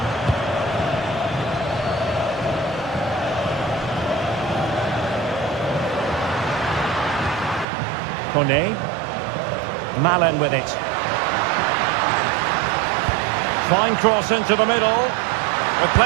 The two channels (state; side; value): drops out; left; at 7.7 s